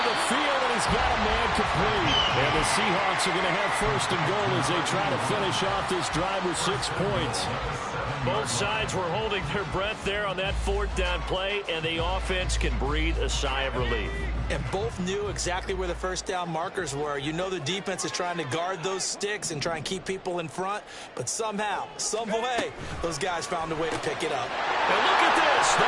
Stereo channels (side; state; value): both; identical; correlation 1.00